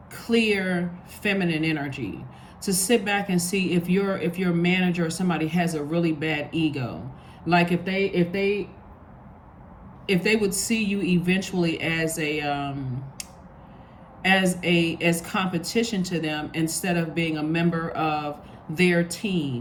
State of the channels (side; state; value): both; identical; correlation 1.00